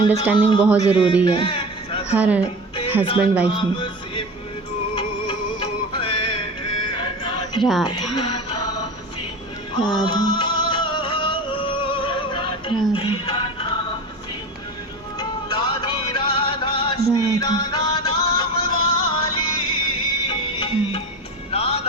बहुत ज़रूरी है हर हस्बैंड वाइफ में। राधा राधा राधा राधा।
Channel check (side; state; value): both; normal; correlation 0.30